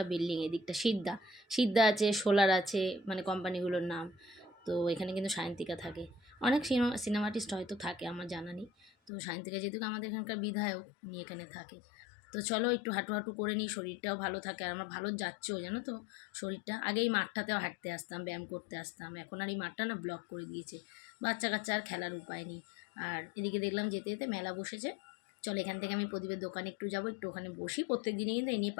বিল্ডিং। এদিকটা সিদ্ধা আছে, সোলার আছে, মানে কোম্পানিগুলোর নাম। তো এখানে কিন্তু সায়ন্তিকা থাকে, অনেক সিনেমা আর্টিস্ট হয়তো থাকে, আমার জানা নেই। তো সায়ন্তিকা যেহেতু আমাদের এখানকার বিধায়ক, উনি এখানে থাকে। তো চলো একটু হাঁটু করে নিই, শরীরটাও ভালো থাকে, আর আমার ভালো যাচ্ছেও জানো তো শরীরটা। আগে এই মাঠটাতেও হাঁটতে আসতাম, ব্যায়াম করতে আসতাম, এখন আর এই মাঠটা না ব্লক করে দিয়েছে, বাচ্চা কাচ্চা আর খেলার উপায় নেই। আর এদিকে দেখলাম যেতে যেতে মেলা বসেছে, চলো এখান থেকে আমি প্রদীপের দোকানে একটু যাবো, একটু ওখানে বসি। প্রত্যেক দিনে কিন্তু এই নিয়ে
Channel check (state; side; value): drops out; right; at 9.1 s